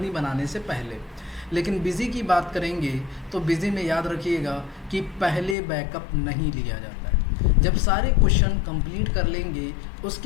बनाने से पहले। लेकिन बिजी की बात करेंगे तो बिजी में याद रखिएगा कि पहले बैकअप नहीं लिया जाता है। जब सारे क्वेश्चन कंप्लीट कर लेंगे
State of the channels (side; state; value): right; drops out; at 5.6 s